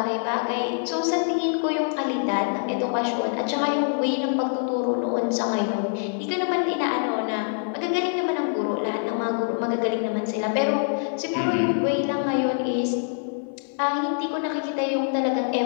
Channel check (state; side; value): silent; right; 59 dB below the other